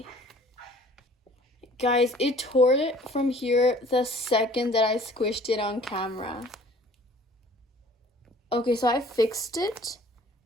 Guys, it tore it from here the second that I squished it on camera. Okay, so I fixed it,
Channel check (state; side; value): normal; both; correlation 0.52